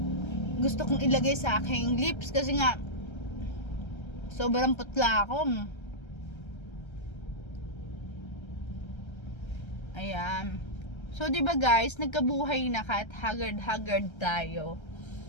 gusto kong ilagay sa aking lips kasi nga, sobrang putla ako. Ayan. So, diba guys, nagkabuhay na kahit haggard-haggard tayo.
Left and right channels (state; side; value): late; right; 1.3 ms